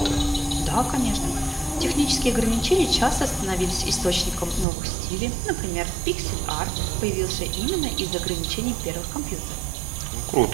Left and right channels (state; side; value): drops out; left; at 4.7 s